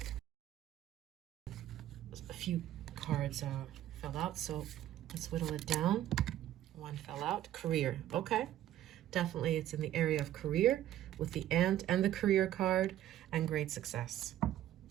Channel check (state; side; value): quieter; left; 12.7 dB